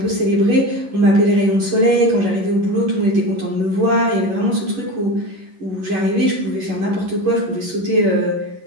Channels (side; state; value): left; late; 11 ms